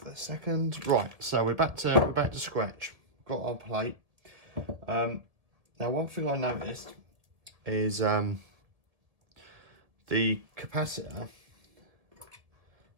a second. Right. So we're back to scratch. Got our plate. Now one thing I noticed is the capacitor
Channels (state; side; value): late; left; 1.7 ms